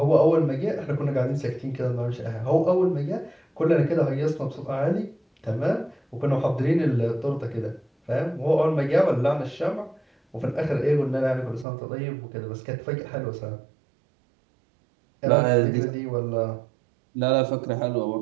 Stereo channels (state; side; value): drops out; left; at 11.7 s